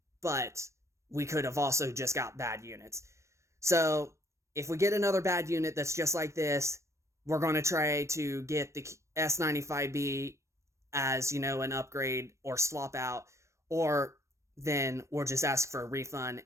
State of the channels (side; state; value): left; late; 0.14 ms